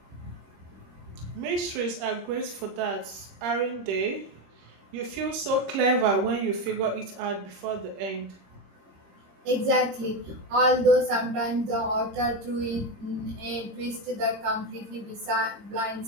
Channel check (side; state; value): left; late; 26 ms